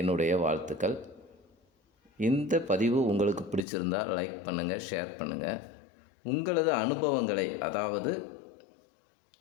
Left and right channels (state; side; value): drops out; right; at 3.7 s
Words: என்னுடைய வாழ்த்துக்கள். இந்த பதிவு உங்களுக்கு பிடிச்சிருந்தால் லைக் பண்ணுங்கள், ஷேர் பண்ணுங்கள். உங்களது அனுபவங்களை, அதாவது